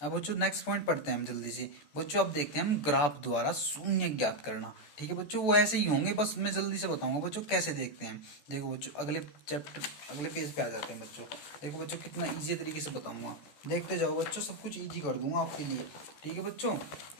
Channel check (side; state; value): right; late; 14 ms